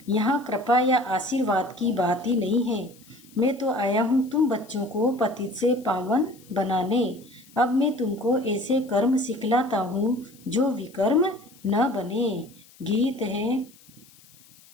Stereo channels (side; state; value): left; noise; hiss, 26 dB below the sound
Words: यहाँ कृपा या आशीर्वाद की बात ही नहीं है। मैं तो आया हूँ तुम बच्चों को पतित से पावन बनाने। अब मैं तुमको ऐसे कर्म सिखलाता हूँ जो विकर्म न बने। गीत है,